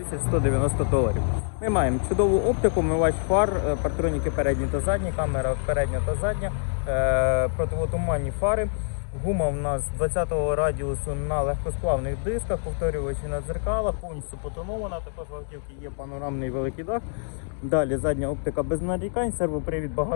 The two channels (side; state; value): right; silent; digital silence